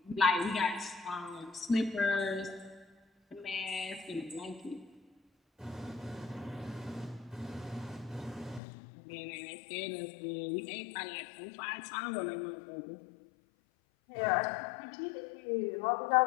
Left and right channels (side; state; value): right; drops out; at 8.6 s